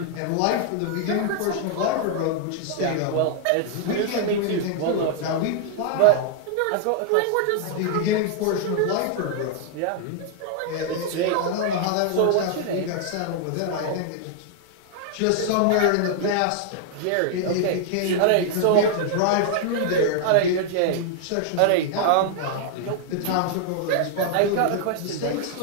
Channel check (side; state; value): both; different; correlation 0.00